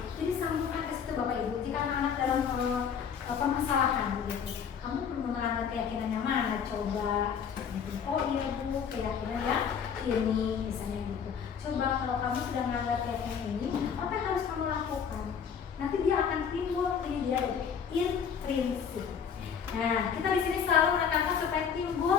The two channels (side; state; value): right; quieter; 7.2 dB